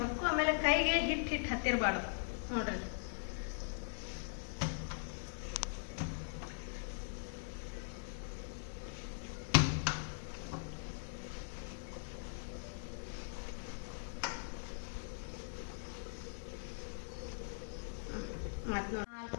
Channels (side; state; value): right; silent; 50 dB below the other